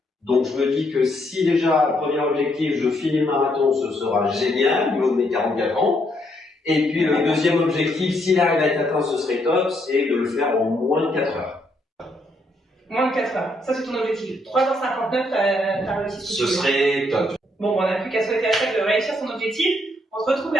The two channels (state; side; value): normal; both; correlation 0.74